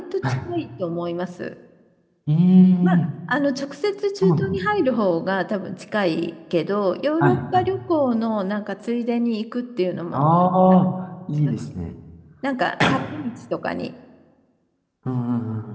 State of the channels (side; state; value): both; identical; correlation 1.00